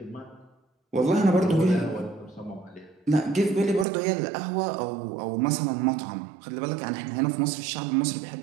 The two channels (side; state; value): left; drops out; at 3.9 s